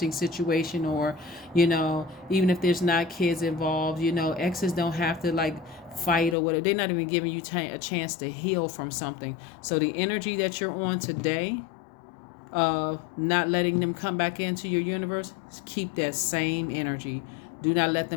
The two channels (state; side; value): drops out; right; at 6.4 s